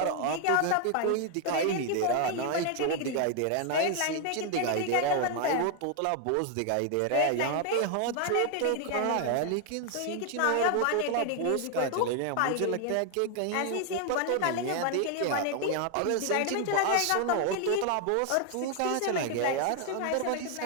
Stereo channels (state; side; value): different; both; correlation 0.00